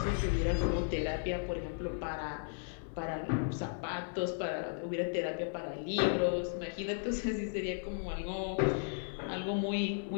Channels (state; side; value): silent; right; digital silence